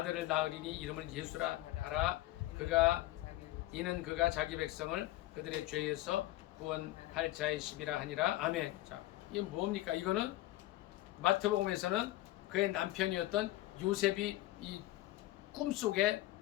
낳으리니 이름을 예수라 하라. 이는 그가 자기 백성을 그들의 죄에서 구원할 자이심이라 하니라. 아멘. 자, 이게 뭡니까? 이거는 마태복음에서는 그의 남편이었던 요셉이 이 꿈속에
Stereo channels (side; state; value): right; quieter; 16.5 dB